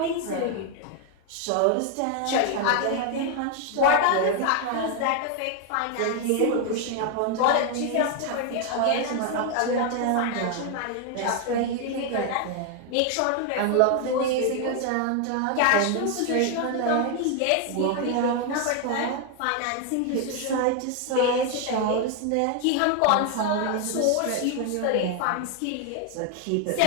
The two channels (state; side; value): different; both; correlation 0.01